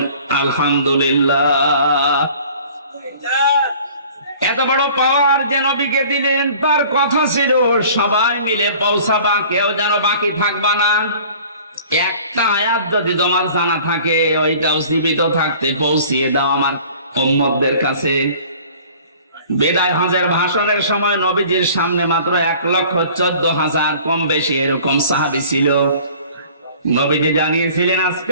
আলহামদুলিল্লাহ। এত বড় পাওয়ার যে নবীকে দিলেন, তার কথা ছিল সবাই মিলে পৌঁছাবা, কেউ যেন বাকি থাকবা না। একটা আয়াত যদি তোমার জানা থাকে ওইটাও জীবিত থাকতে পৌঁছিয়ে দাও আমার উম্মতদের কাছে। বিদায় হজের ভাষণের সময় নবীজির সামনে মাত্র 1,14,000 কম বেশি এরকম সাহাবী ছিল। নবীজি জানিয়েছিলেন আজকে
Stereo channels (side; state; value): both; inverted; correlation -0.48